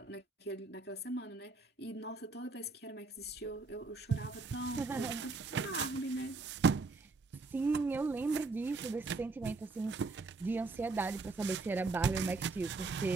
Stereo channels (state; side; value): quieter; left; 3.8 dB